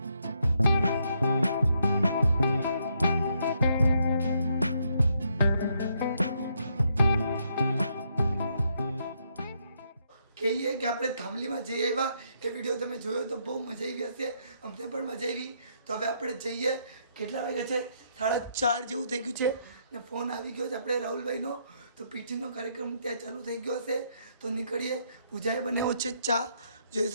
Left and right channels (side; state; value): both; inverted; correlation -0.75